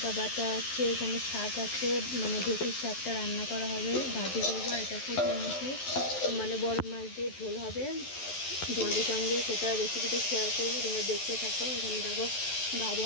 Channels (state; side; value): late; right; 11 ms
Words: বাটা আছে, এখানে শাক আছে, মানে ঢেঁকির শাকটা রান্না করা হবে, ভাজি করবো। এটা পুঁটির মুখি, মানে বড় মাছ দিয়ে ঝোল হবে। তোমাদের সঙ্গে সেটা রেসিপিটা শেয়ার করবো, তোমরা দেখতে থাকো। এখানে দেখো ভাজা